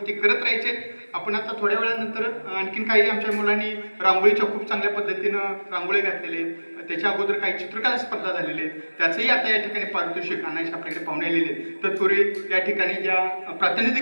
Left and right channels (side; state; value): both; inverted; correlation -1.00